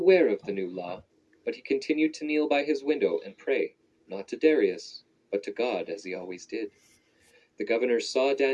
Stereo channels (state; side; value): identical; both; correlation 1.00